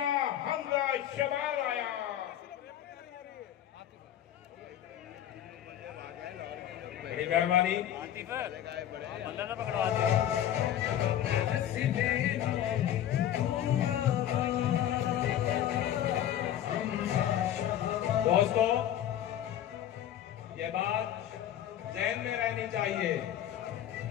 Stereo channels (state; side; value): quieter; right; 11.2 dB